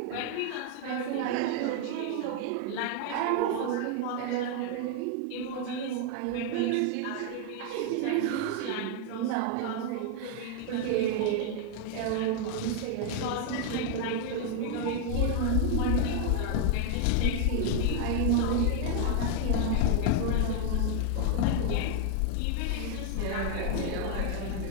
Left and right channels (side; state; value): both; different; correlation 0.00